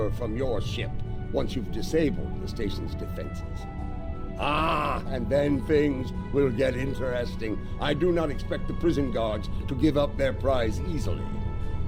from your ship once you've disabled the station's defenses. And then things will get interesting. I do not expect the prison guards to give up their prize easily.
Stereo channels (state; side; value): identical; both; correlation 1.00